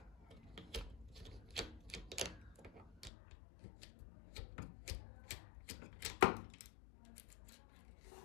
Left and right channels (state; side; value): drops out; right; at 3.1 s